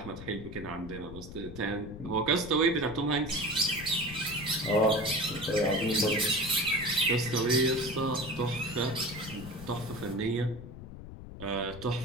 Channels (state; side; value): noise; left; rumble, 13 dB below the sound